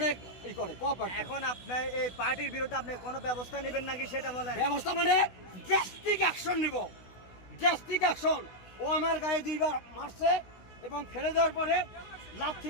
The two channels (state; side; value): late; right; 16 ms